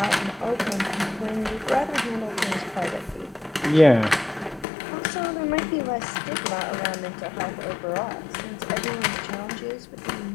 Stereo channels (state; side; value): drops out; right; at 4.7 s